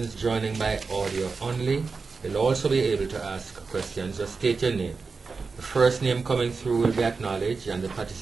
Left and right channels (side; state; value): left; quieter; 4.6 dB